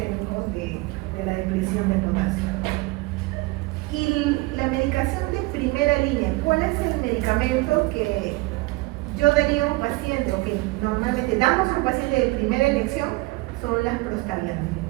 de la depresión de potasio. Y la medicación de primera línea, ¿cuál es el medicamento que yo daría a un paciente, o que normalmente damos a un paciente de primera elección? Son las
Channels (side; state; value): left; quieter; 22.6 dB